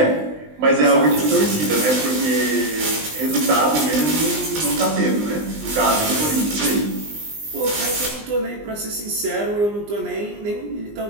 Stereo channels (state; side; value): late; left; 20 ms